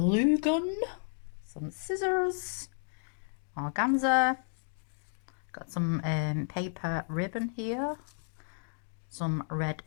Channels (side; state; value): right; silent; digital silence